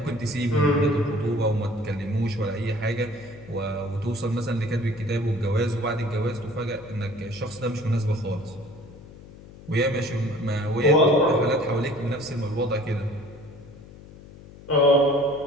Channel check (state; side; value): noise; left; hum, 19 dB below the sound